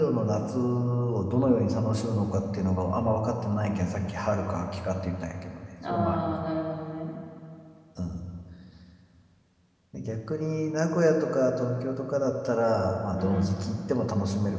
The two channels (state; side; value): identical; both; correlation 1.00